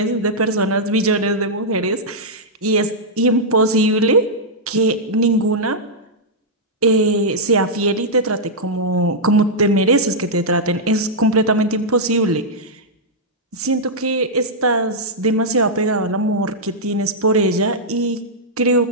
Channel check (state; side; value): normal; both; correlation -0.08